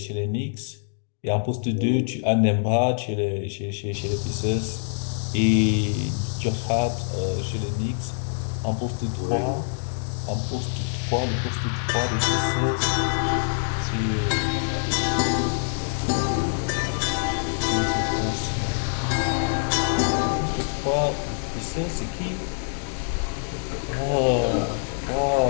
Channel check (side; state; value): right; silent; digital silence